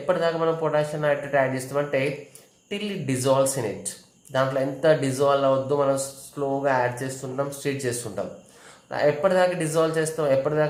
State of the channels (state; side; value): identical; both; correlation 1.00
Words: మనం పొటాషియం నైట్రేట్ యాడ్ చేస్తామంటే till it dissolves in it. దాంట్లో ఎంత డిజాల్వ్ అవద్దు మనం స్లోగా యాడ్ చేస్తుంటాం, స్ట్రీట్ చేస్తుంటాం. ఎప్పటిదాకా డిజాల్వ్ చేస్తాం,